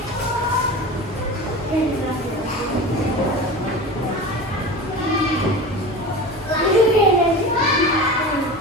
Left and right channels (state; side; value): normal; both; correlation 0.31